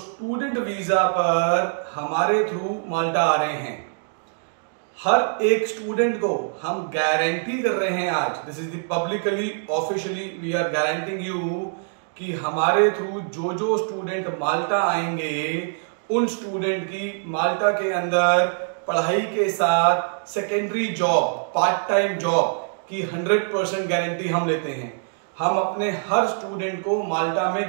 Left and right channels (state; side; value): silent; left; digital silence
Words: वीज़ा पर हमारे थ्रू माल्टा आ रहे हैं। हर एक स्टूडेंट को हम गारंटी कर रहे हैं आज, this is the publicly officially we are guaranteeing you कि हमारे थ्रू जो जो स्टूडेंट माल्टा आएंगे उन स्टूडेंट की माल्टा के अंदर पढ़ाई के साथ secondary job, part time job की 100% गारंटी हम लेते हैं। हम अपने हर स्टूडेंट को माल्टा